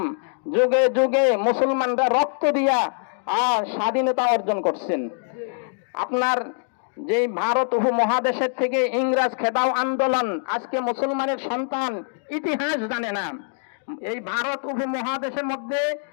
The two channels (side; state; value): right; silent; digital silence